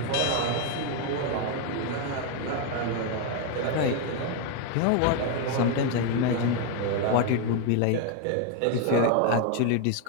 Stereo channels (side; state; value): both; different; correlation 0.01